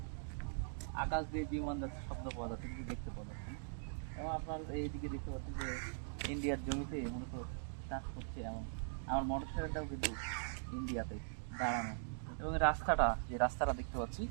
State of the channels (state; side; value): silent; left; digital silence